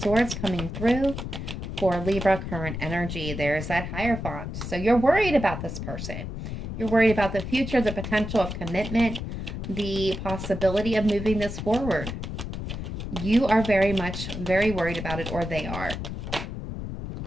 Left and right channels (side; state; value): left; noise; rumble, 6 dB below the sound